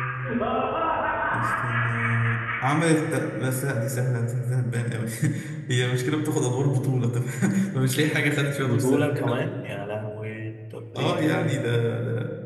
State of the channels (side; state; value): both; identical; correlation 1.00